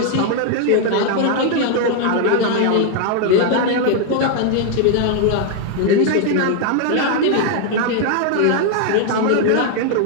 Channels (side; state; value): both; different; correlation 0.00